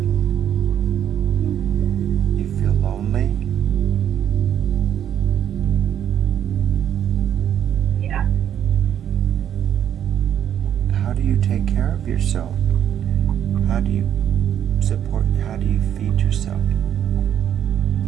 You feel lonely? Yeah. How do you take care of yourself? How do you support, how do you feed yourself?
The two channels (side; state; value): left; quieter; 9.8 dB